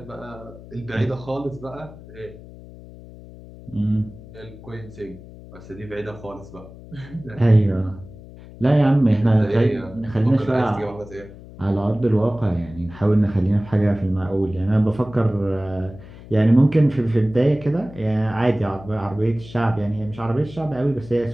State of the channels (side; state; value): left; noise; hum, 18 dB below the sound